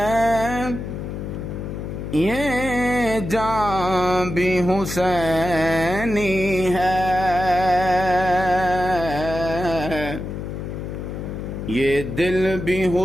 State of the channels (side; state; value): left; noise; hum, 6 dB below the sound